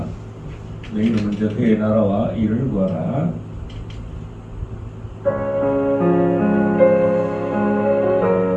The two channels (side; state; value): both; identical; correlation 1.00